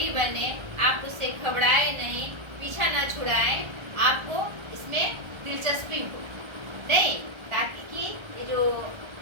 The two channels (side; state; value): left; late; 1.3 ms